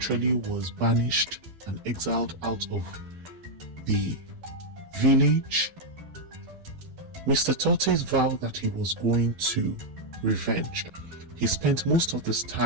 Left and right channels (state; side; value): late; left; 12 ms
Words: was banished and exiled out of the village. Mr. Tourtise vowed that he was going to revenge. He spent most of this